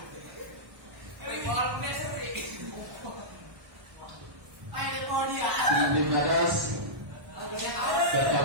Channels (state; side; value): late; left; 1.2 ms